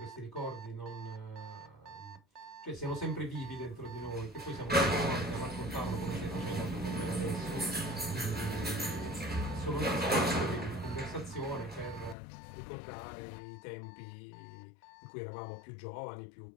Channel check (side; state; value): right; drops out; at 12.2 s